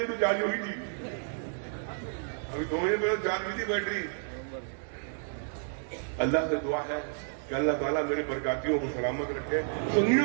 تو چارج ہوئی تھی، ابھی 2 مہینے پہلے چارج ہوئی تھی بیٹری. اللہ سے دعا ہے کہ اللہ تعالیٰ میرے برکاتیوں کو سلامت رکھے، سنیوں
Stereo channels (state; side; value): silent; left; digital silence